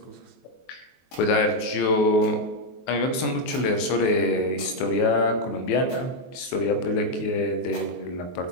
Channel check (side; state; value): right; late; 23 ms